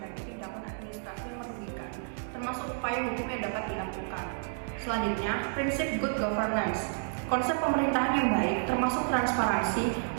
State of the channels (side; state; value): left; silent; digital silence